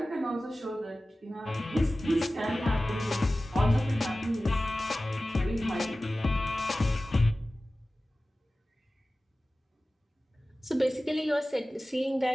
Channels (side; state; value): both; normal; correlation 0.96